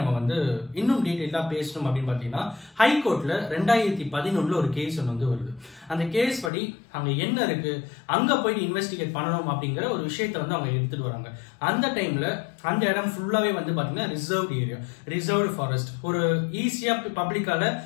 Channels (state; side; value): drops out; right; at 6.5 s